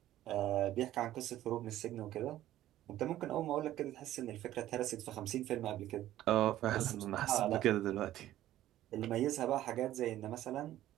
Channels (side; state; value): left; quieter; 13.7 dB